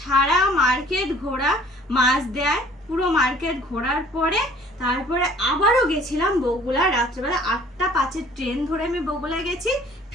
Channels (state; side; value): normal; both; correlation 0.54